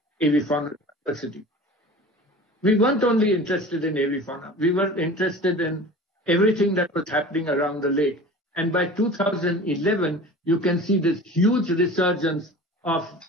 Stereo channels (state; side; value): normal; both; correlation 0.39